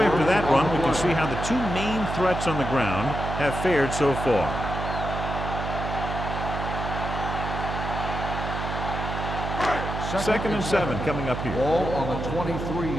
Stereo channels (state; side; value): noise; right; hum, 5 dB below the sound